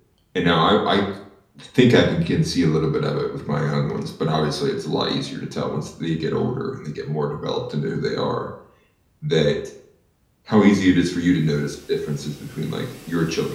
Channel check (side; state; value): both; identical; correlation 1.00